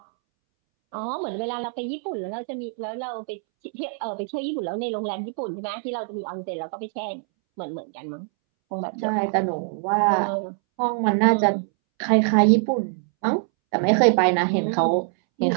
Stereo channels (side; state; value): left; silent; 62 dB below the other